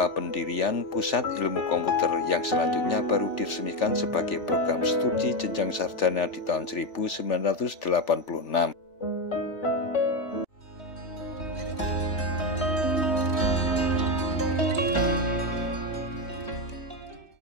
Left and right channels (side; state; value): right; late; 3.4 ms